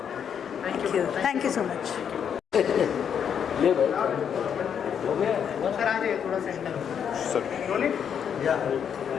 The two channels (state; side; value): quieter; right; 8.0 dB